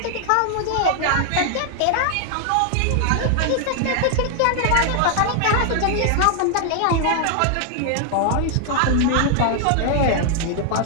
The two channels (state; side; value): different; both; correlation 0.00